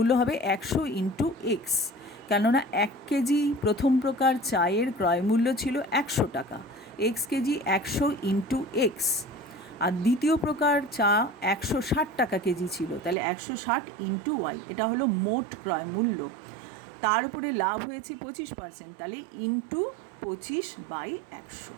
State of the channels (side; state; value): left; drops out; at 13.2 s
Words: হবে 100 ইন্টু x, কেননা 1 কেজি প্রথম প্রকার চায়ের ক্রয় মূল্য ছিল 100 টাকা, x কেজি 100 ইন্টু x, আর দ্বিতীয় প্রকার চা 160 টাকা কেজি ছিল, তাহলে 160 ইন্টু y, এটা হলো মোট ক্রয় মূল্য। তার উপরে লাভ হয়েছে 25%, তাহলে ইন্টু 25/100।